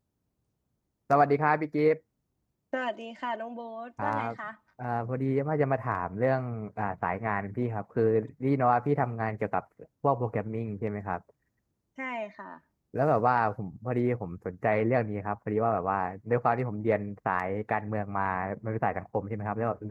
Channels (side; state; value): both; identical; correlation 1.00